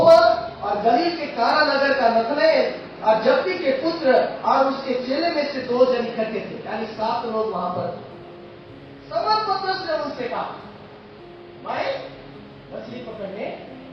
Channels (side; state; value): both; identical; correlation 1.00